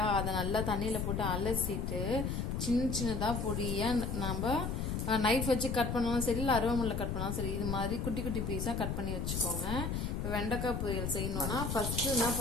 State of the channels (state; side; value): noise; left; rumble, 1 dB below the sound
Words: அதை நல்லா தண்ணியில் போட்டு அலசிட்டு சின்ன சின்னதாக பொடியாக நம்ம நைஃப் வச்சு கட் பண்ணாலும் சரி, இல்லை அருவாமனையில் கட் பண்ணாலும் சரி, இது மாதிரி குட்டி குட்டி பீஸாக கட் பண்ணி வச்சுக்கோங்க. இப்போ வெண்டைக்காய் பொரியல் செய்யணும்னா ஃபர்ஸ்ட்டு என்ன